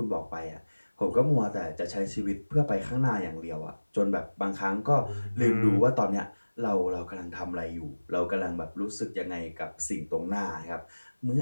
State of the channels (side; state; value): both; inverted; correlation -1.00